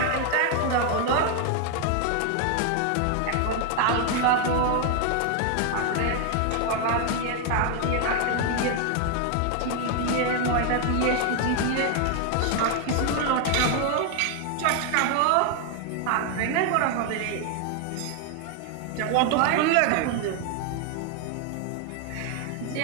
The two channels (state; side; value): different; both; correlation 0.01